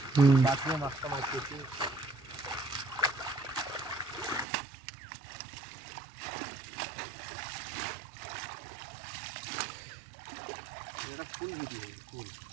বাঁচিয়ে মাছটা মারতেছি। এটা ফুল ভিডিও ফুল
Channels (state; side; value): drops out; left; at 4.5 s